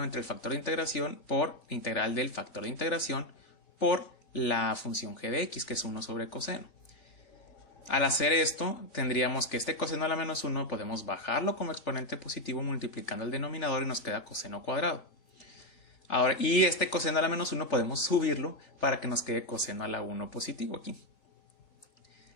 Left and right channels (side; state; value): right; late; 3.4 ms